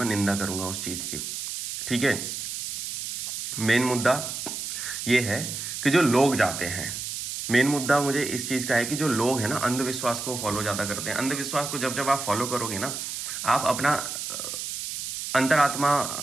निंदा करूंगा उस चीज़ की। ठीक है, मेन मुद्दा ये है कि जो लोग जाते हैं, मेन मुद्दा मुझे इस चीज़ का है कि जो लोग हैं ना, अंधविश्वास को फॉलो ज़्यादा करते हैं। अंधविश्वास को जब जब आप फॉलो करोगे ना, आप अपना अंतरात्मा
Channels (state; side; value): noise; right; hiss, 5 dB below the sound